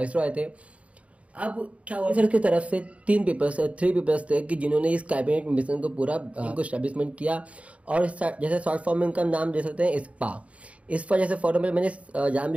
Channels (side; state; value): left; late; 0.064 ms